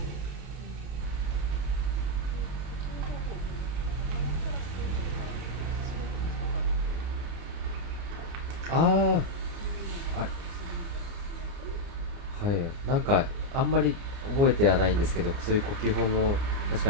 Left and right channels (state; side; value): late; left; 29 ms